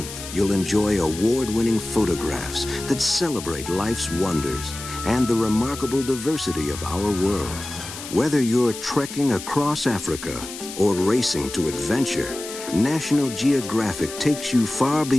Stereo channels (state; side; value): noise; left; hiss, 11 dB below the sound